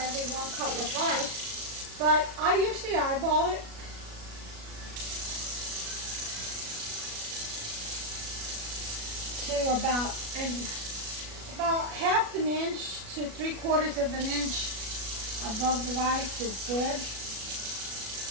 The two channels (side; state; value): left; late; 37 ms